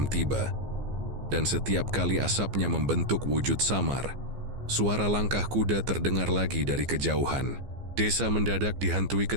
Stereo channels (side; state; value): left; late; 15 ms